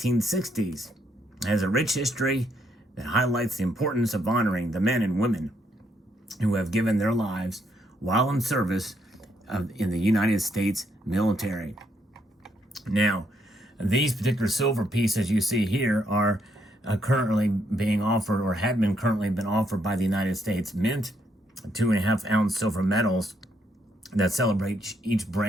It has a rich history that highlights the importance of honoring the men and women who have given their lives while in service in the United States military. Now, these particular silver pieces you see here are currently being offered, or had been currently been offered by the United States Mint, 2.5-ounce silver medals that celebrate each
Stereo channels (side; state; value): both; normal; correlation 0.74